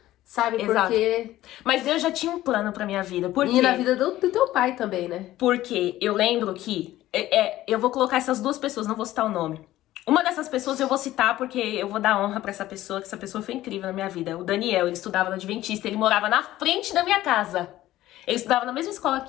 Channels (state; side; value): quieter; right; 15.0 dB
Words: sabe? Exato. Porque... Mas Deus já tinha um plano pra minha vida. Por quê? E na vida do teu pai também, né? Porque eu lembro que... eu vou colocar essas duas pessoas, não vou citar o nome. Uma dessas pessoas eu vou citar porque eu vou dar honra pra essa pessoa, que essa pessoa foi incrível na minha vida. O Daniel, ele estudava no Adventista, ele morava na frente da minha casa. Ele estudava na mesma escola